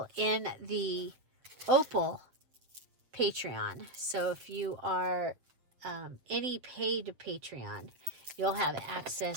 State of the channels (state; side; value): late; left; 7.6 ms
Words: in the Opal Patreon. So if you are any paid Patreon, you'll have